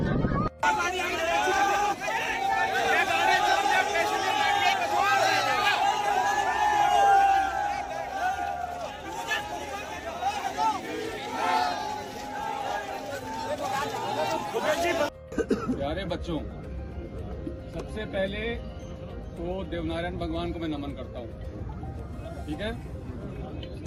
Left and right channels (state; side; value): identical; both; correlation 1.00